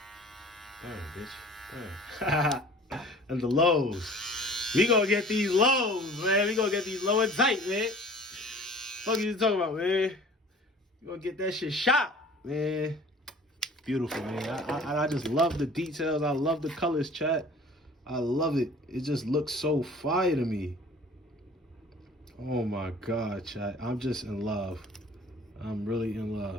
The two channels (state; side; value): normal; both; correlation 0.47